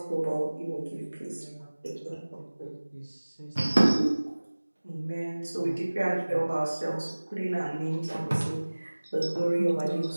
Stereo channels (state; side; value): inverted; both; correlation -1.00